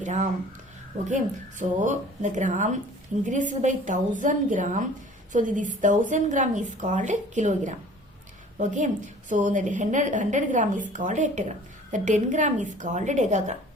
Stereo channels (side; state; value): both; normal; correlation 0.48